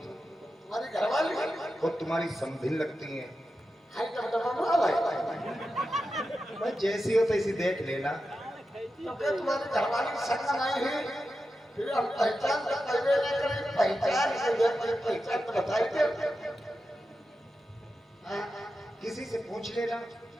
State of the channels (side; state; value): both; normal; correlation 0.90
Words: घरवाली वो तुम्हारी समधिन लगती है। हाय कब तक भाई भाई जैसी हो तैसी देख लेना। तो क्या तुम्हारी घरवाली संग नहीं है फिर हम पहचान तो पहले नहीं करें, पहचान पहचान तो बताइए। किसी से पूछ लेना।